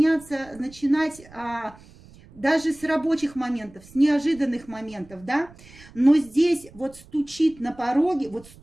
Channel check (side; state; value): right; noise; rumble, 23 dB below the sound